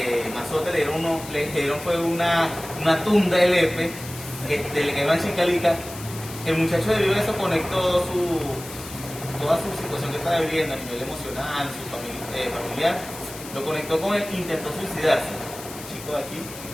mazote, le dieron fue una tunda de lepe, le cayó una chicalica. El muchacho debido a eso conectó toda su situación que estaba viviendo a nivel emocional, su familiar, lo conectó con el que intentó suicidarse, el chico de aquí,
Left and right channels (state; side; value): noise; left; hiss, 14 dB below the sound